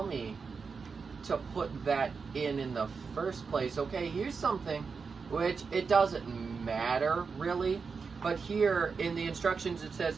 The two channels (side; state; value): left; quieter; 5.2 dB